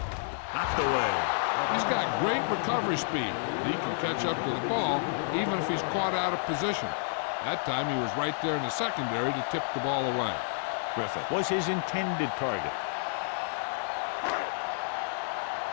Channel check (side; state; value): right; silent; digital silence